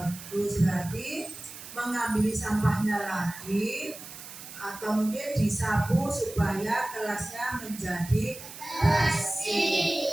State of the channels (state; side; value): noise; right; hiss, 14 dB below the sound